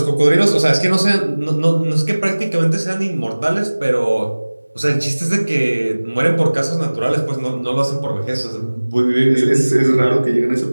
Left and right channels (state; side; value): inverted; both; correlation -1.00